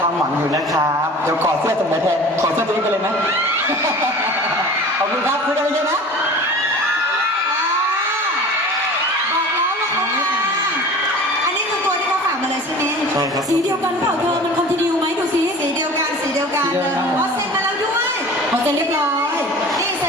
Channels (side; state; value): both; normal; correlation 0.40